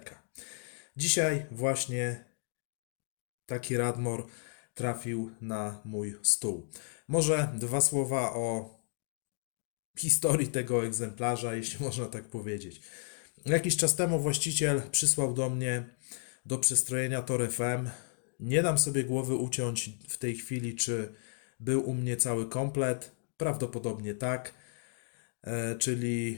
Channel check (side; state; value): right; silent; digital silence